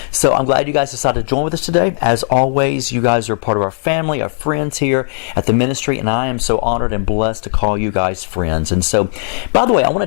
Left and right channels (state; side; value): silent; right; digital silence